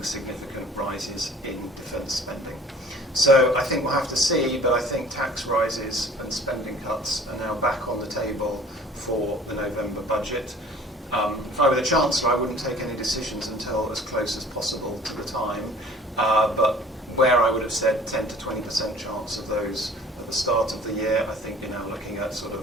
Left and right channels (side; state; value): both; normal; correlation 0.49